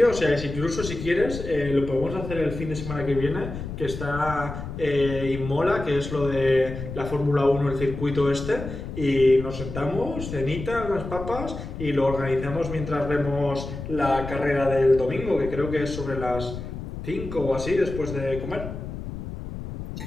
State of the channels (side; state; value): left; noise; rumble, 8 dB below the sound